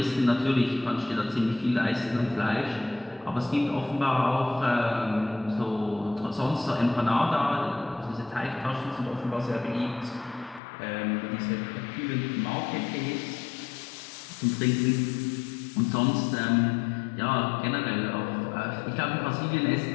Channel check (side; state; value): right; drops out; at 10.6 s